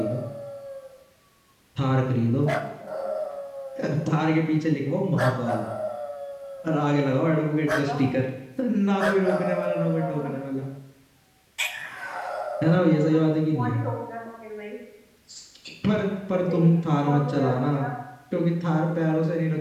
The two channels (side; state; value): both; identical; correlation 1.00